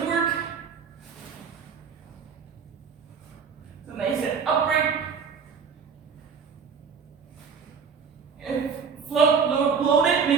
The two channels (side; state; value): left; quieter; 6.1 dB